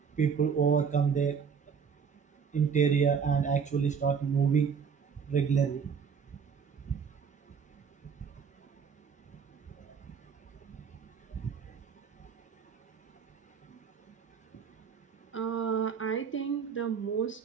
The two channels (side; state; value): left; quieter; 6.4 dB